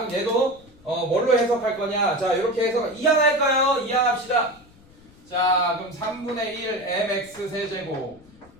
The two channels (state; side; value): noise; left; rumble, 26 dB below the sound